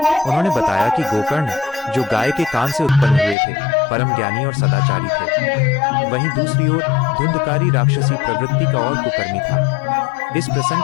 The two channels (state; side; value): drops out; right; at 3.4 s